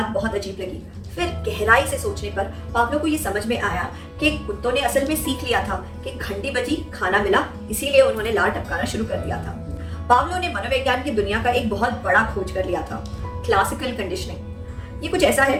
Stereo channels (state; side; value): identical; both; correlation 1.00